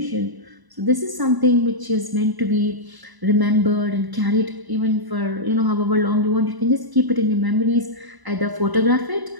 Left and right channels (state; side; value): late; left; 1.0 ms